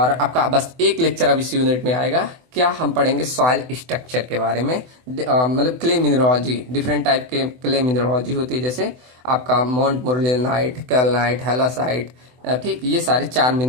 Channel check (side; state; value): left; late; 24 ms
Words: आपका बस एक लेक्चर अब इस यूनिट में आएगा, क्या हम पढ़ेंगे सॉइल स्ट्रक्चर के बारे में, मतलब क्ले मिनरोलॉजी, डिफरेंट टाइप के क्ले मिनरोलॉजी होती है, जैसे आपका मोंट मोरलेनाइट, कैल्नाइट, हैलासाइट। ठीक, ये सारे 4